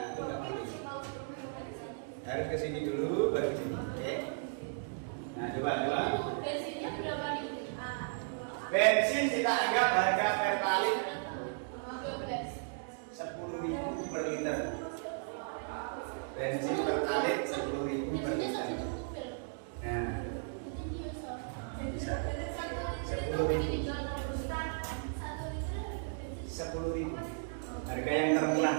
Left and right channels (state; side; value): silent; left; digital silence